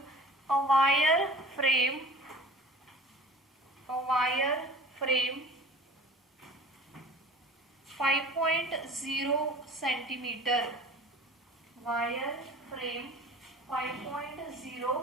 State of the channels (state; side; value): normal; both; correlation 0.41